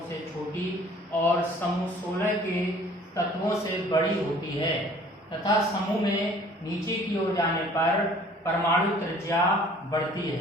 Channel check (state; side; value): normal; both; correlation 0.53